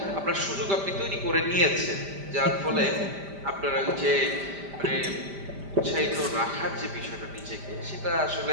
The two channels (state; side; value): late; left; 5.0 ms